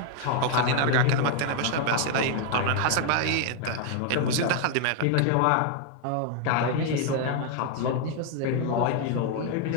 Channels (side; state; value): both; different; correlation 0.00